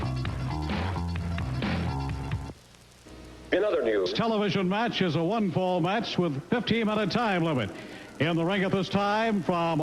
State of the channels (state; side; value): identical; both; correlation 1.00